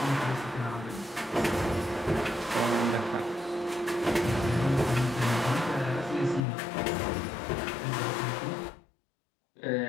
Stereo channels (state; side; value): drops out; right; at 6.5 s